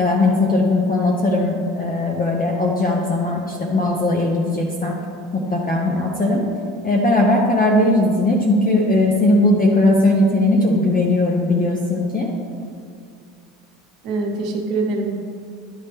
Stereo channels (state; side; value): normal; both; correlation 0.51